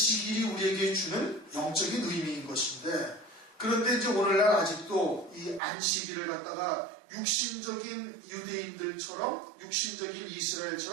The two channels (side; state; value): left; drops out; at 5.6 s